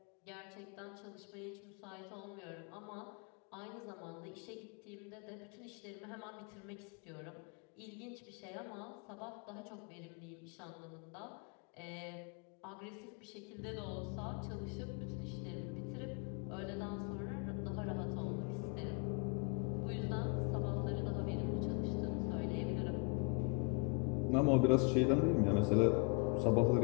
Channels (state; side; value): quieter; right; 33.9 dB